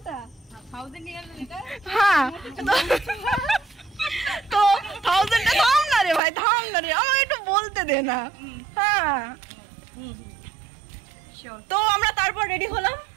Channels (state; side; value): drops out; left; at 6.2 s